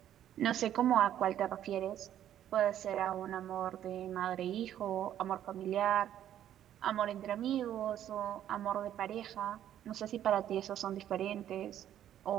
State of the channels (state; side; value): quieter; left; 11.1 dB